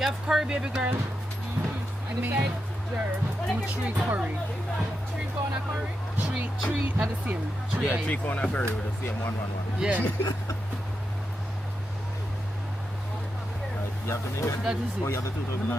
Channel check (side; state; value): both; normal; correlation 0.87